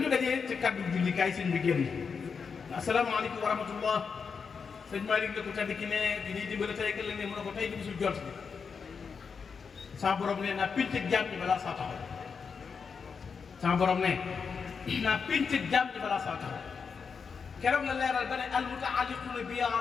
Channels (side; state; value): right; quieter; 5.8 dB